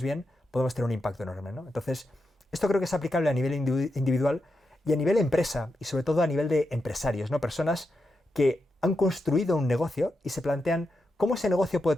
bien, podemos tener un impacto enorme, ¿no? Entonces, esto creo que es aplicable a nivel individual y a nivel empresa, y sobre todo a nivel de empresarios, ¿no? Personas que han construido un negocio y se plantean cómo ese negocio puede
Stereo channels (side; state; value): both; normal; correlation 0.86